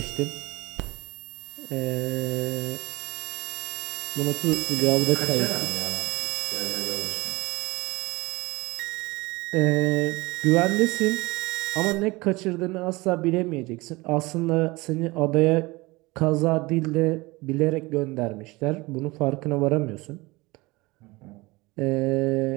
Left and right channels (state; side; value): quieter; left; 22.6 dB